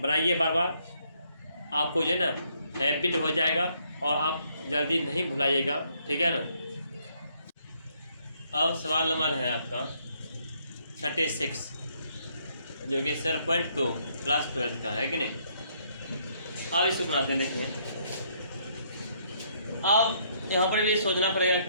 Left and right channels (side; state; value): both; inverted; correlation -0.70